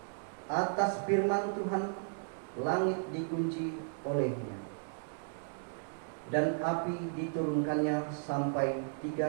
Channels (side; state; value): left; silent; digital silence